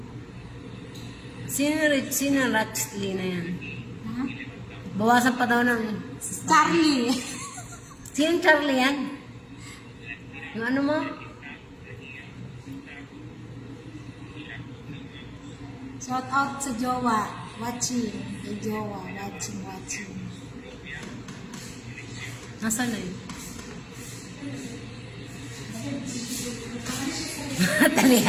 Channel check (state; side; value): identical; both; correlation 1.00